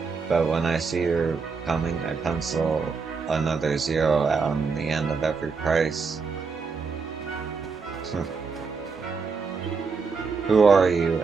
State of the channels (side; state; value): left; quieter; 4.9 dB